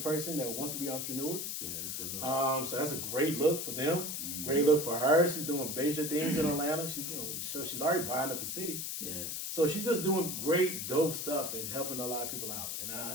that wants to be entrepreneurs. Yeah, that's a good look. So that's a great look for them. Great look for her. She's doing major things in Atlanta. She's already buying up the city. Yeah. So she's just doing great, dope stuff and helping a lot of people out, and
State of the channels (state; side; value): noise; left; hiss, 4 dB below the sound